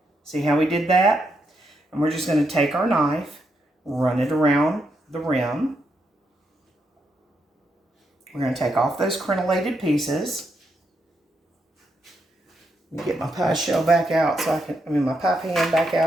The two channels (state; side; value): normal; both; correlation 0.81